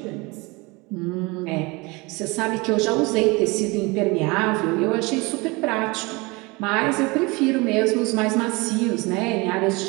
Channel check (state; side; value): quieter; left; 25.5 dB